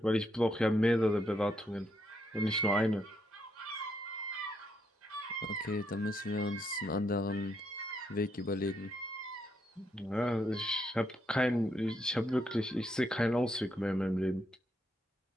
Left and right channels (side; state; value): both; normal; correlation 0.77